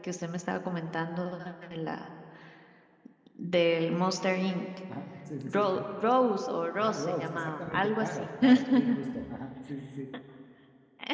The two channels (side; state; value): both; identical; correlation 1.00